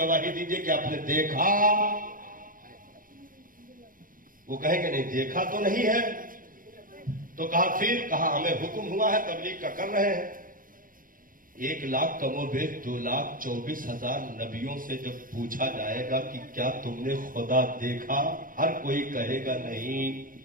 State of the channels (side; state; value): left; late; 0.40 ms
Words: दीजिए कि आपने देखा। वो कहेंगे नहीं देखा तो नहीं है। तो कहा फिर, कहा हमें हुक्म हुआ है, तबलीग का कर रहे हैं। 1 लाख कमोबेश 2,24,000 नबियों से जब पूछा जाएगा कि क्या तुमने खुदा देखा, हर कोई कहेगा नहीं।